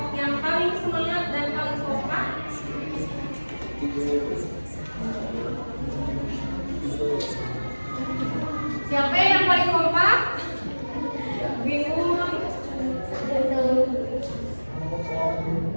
yang paling semangat dan paling kompak. Siapa yang paling kompak? Bingung.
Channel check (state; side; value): inverted; both; correlation -1.00